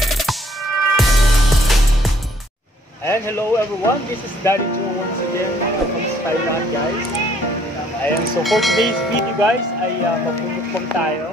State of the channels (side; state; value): both; normal; correlation 0.63